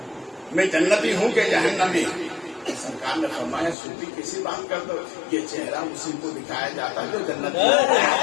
میں جنتی ہوں کہ جہنمی. سرکار نے فرمایا سوتی کسی بات کر دو، یہ چہرہ اسی کو دکھایا جاتا ہے جو جنتی ہے.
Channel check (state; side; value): drops out; right; at 3.8 s